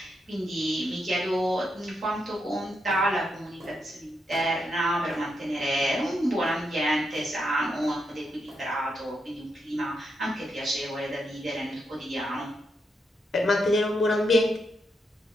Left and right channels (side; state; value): both; normal; correlation 0.82